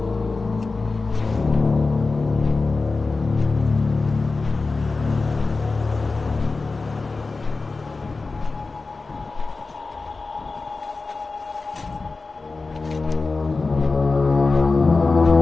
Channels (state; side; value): quieter; right; 3.8 dB